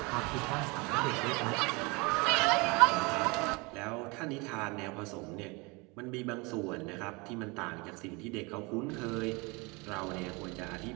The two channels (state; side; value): quieter; left; 27.2 dB